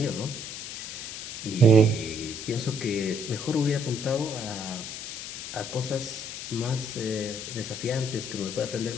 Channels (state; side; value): noise; left; hiss, 8 dB below the sound